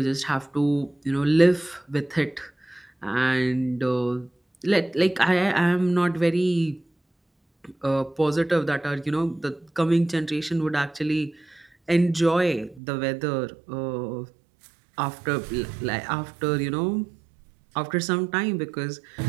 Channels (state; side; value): drops out; left; at 12.8 s